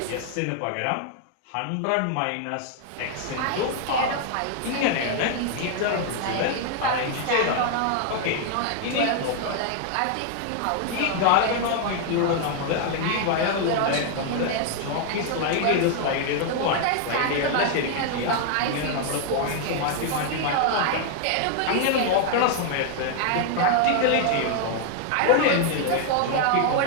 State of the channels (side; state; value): both; different; correlation 0.00